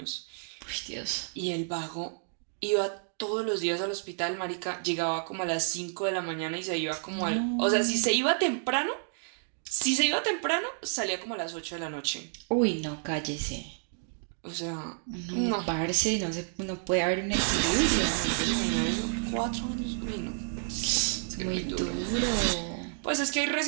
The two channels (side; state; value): left; silent; digital silence